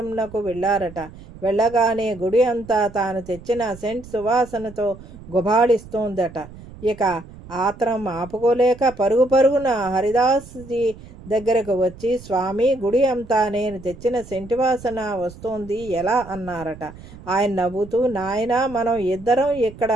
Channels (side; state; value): right; noise; rumble, 18 dB below the sound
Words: వెళ్ళారట. వెళ్ళగానే గుడి అంతా తాను తెచ్చిన సెంట్ సువాసనతో గుబాళిస్తోందట. ఇక ఆత్రం ఆపుకోలేక పరుగు పరుగున హరిదాస్జీ దగ్గరకు వచ్చి, స్వామి, గుడి అంతా నేను తెచ్చిన సెంటి వాసన వస్తోంది, ఎలా అన్నారట. ఆయన నవ్వుతూ, నాయనా, మనం ఇద్దరం ఇక్కడ